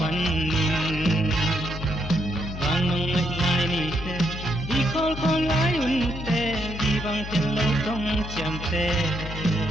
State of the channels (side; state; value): left; noise; hum, 8 dB below the sound